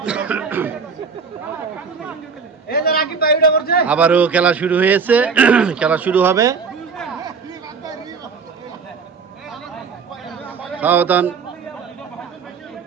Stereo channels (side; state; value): left; quieter; 5.5 dB